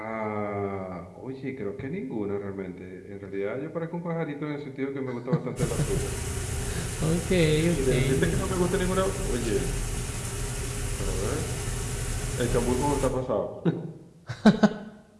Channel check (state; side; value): identical; both; correlation 1.00